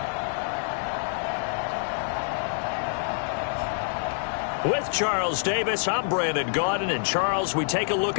With Charles Davis, I'm Brandon Gaudin. And Charles, we take a look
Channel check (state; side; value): silent; right; digital silence